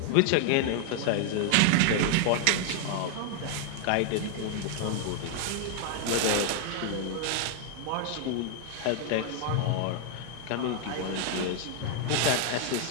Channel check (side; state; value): both; different; correlation 0.00